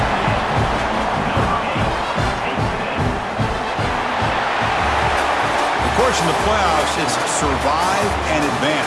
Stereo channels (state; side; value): identical; both; correlation 1.00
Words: In the playoffs, it's survive and